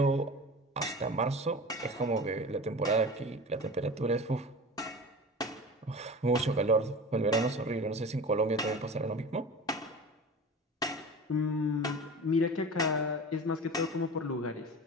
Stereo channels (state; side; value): normal; both; correlation 0.34